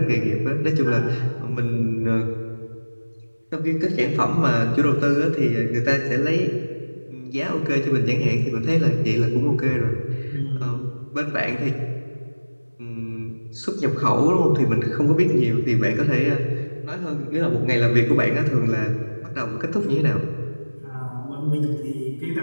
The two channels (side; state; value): both; inverted; correlation -1.00